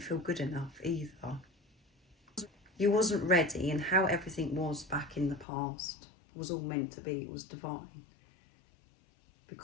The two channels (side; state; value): right; drops out; at 5.5 s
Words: good enough either. You wasn't ready, and how everything was back in the past was all meant to be, it was divine.